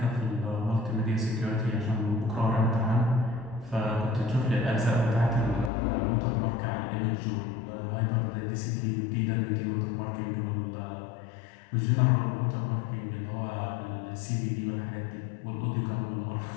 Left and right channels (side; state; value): right; drops out; at 5.7 s